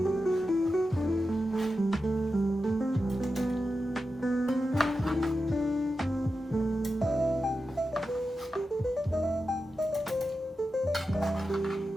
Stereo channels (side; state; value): both; normal; correlation 0.91